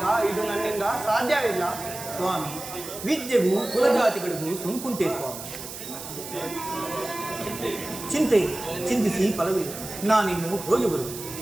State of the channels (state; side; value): noise; right; hiss, 10 dB below the sound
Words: ಇದು ನನ್ನಿಂದ ಸಾಧ್ಯವಿಲ್ಲ. ಸ್ವಾಮಿ, ವಿದ್ಯೆಗೂ ಕುಲಜಾತಿಗಳಿಗೂ ಸೋಂಕುಂಟೆ ಸ್ವಾಮಿ. ಚಿಂತಿಸಿ ಫಲವಿಲ್ಲ. ನಾನಿನ್ನು ಹೋಗಿ ಬರುವೆ.